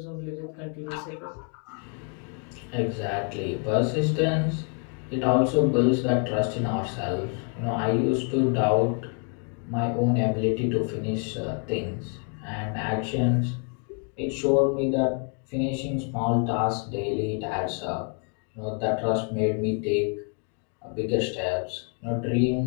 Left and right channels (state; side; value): quieter; right; 39.8 dB